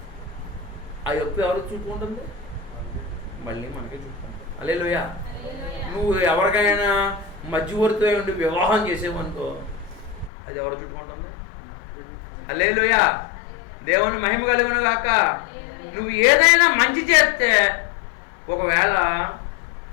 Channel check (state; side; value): drops out; right; at 10.3 s